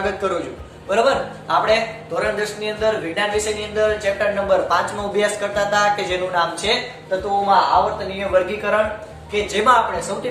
કરું છું. બરોબર, આપણે ધોરણ 10 ની અંદર વિજ્ઞાન વિષયની અંદર ચેપ્ટર નંબર 5 નો અભ્યાસ કરતા હતા કે જેનું નામ છે તત્વોમાં આવર્તનીય વર્ગીકરણ, કે જેમાં આપણે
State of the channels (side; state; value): both; identical; correlation 1.00